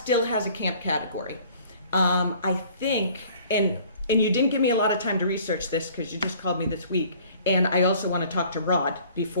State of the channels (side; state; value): both; inverted; correlation -0.52